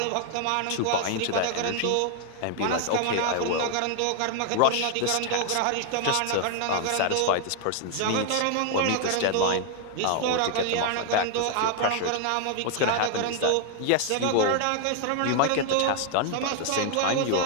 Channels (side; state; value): both; different; correlation 0.00